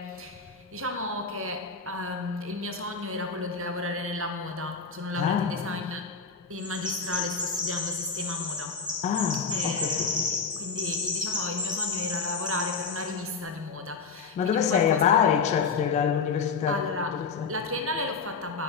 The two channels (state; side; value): quieter; right; 5.1 dB